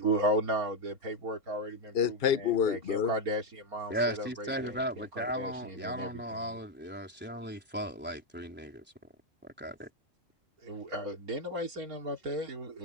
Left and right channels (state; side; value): normal; both; correlation 0.04